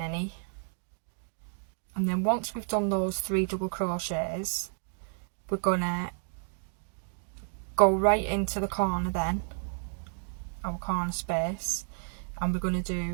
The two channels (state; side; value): silent; left; digital silence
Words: And then once we've done those 3 double crochets, we're going to go right into the corner then, our corner space, and we're going to